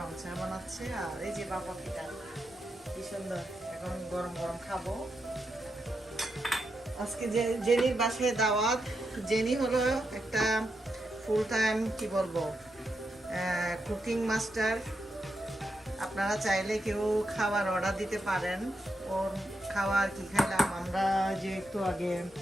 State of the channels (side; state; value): both; normal; correlation 0.84